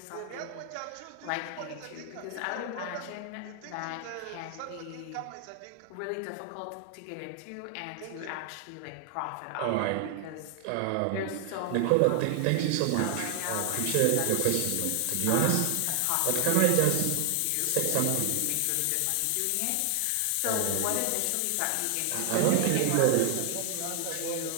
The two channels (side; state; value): both; different; correlation 0.00